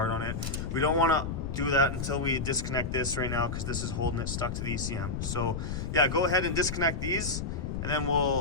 on it. We don't want to do that until we disconnect this right now, because this is holding it stuck to the ECM. So yeah, go ahead and disconnect these, and then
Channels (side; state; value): left; noise; rumble, 4 dB below the sound